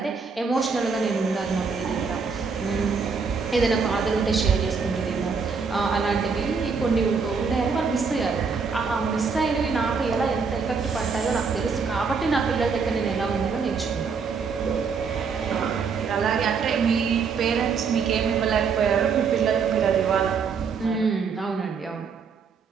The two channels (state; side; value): quieter; left; 5.4 dB